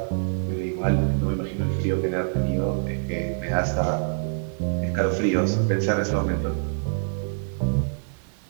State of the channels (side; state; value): left; silent; digital silence